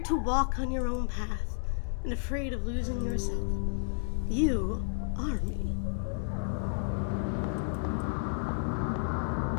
to walk on your own path, and afraid of losing yourself. You are me.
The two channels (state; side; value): silent; right; digital silence